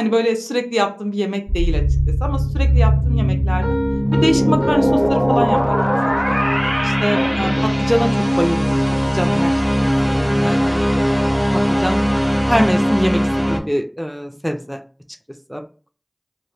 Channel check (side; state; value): both; identical; correlation 1.00